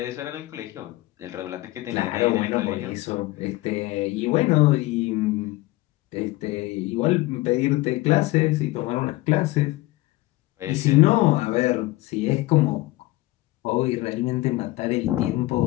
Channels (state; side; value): quieter; right; 19.4 dB